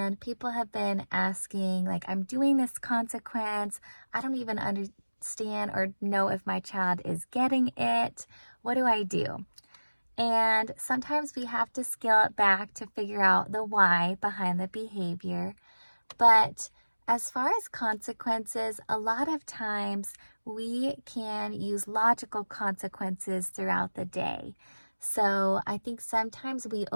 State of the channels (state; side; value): inverted; both; correlation -1.00